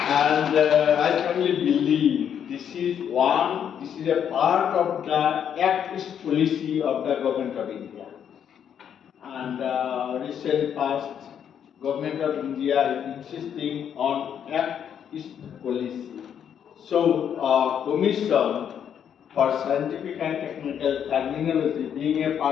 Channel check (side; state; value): right; quieter; 8.6 dB